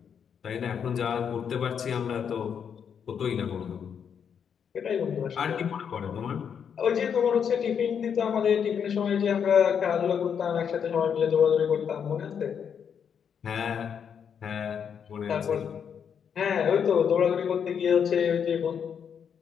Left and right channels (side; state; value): right; quieter; 7.5 dB